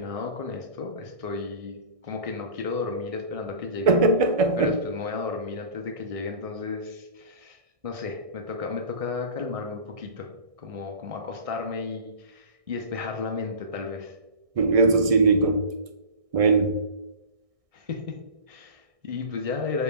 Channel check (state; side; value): late; left; 1.6 ms